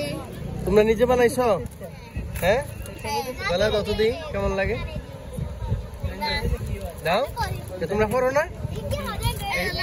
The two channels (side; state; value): both; identical; correlation 1.00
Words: তোমরা নিজে বানাইছো? হ্যাঁ মালা দাও তো দিই, কেমন লাগে দাও। তোমরা পড়ো না?